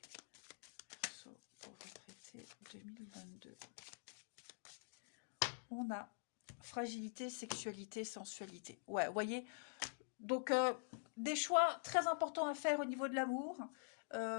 Verseau pour votre été 2022. On a fragilité, sexualité, sensualité. Ouais, vous voyez. Donc, des choix très importants à faire au niveau de l'amour.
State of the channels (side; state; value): right; silent; digital silence